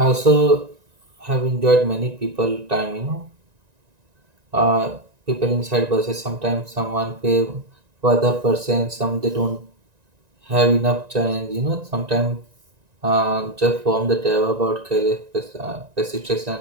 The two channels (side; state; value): left; late; 1.9 ms